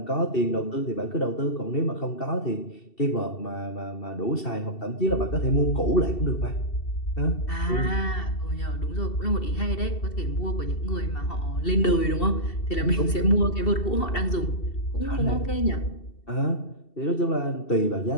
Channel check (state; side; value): late; right; 2.7 ms